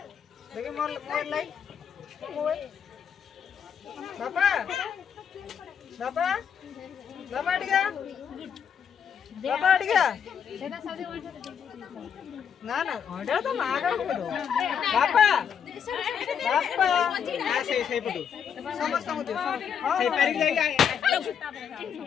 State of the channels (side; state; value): right; quieter; 7.7 dB